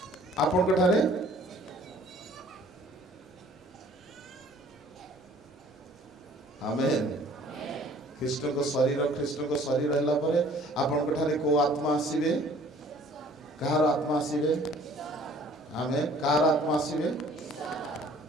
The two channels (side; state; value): both; normal; correlation 0.54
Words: आपन कठारे आमेन। ख्रीष्ट को शरीर हैला परे आपन कठारे को आत्मा आसीबे? कार आत्मा आसीबे? आमेन। कार आत्मा आसीबे?